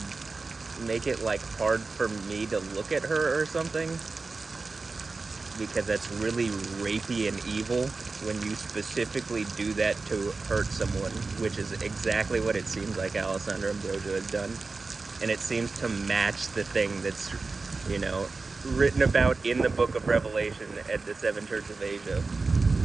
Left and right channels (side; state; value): left; quieter; 3.9 dB